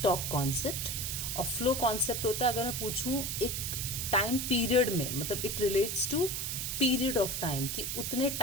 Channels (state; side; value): noise; right; hiss, 2 dB below the sound